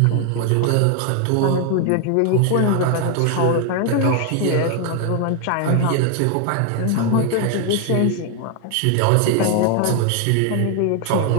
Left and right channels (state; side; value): different; both; correlation 0.01